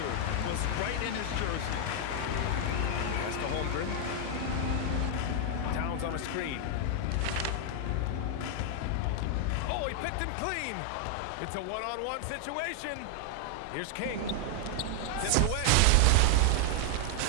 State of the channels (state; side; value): different; both; correlation 0.00